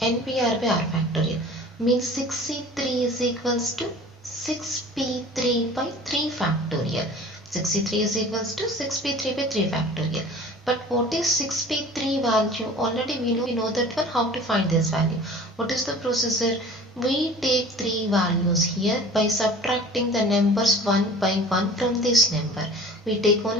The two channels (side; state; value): both; normal; correlation 0.43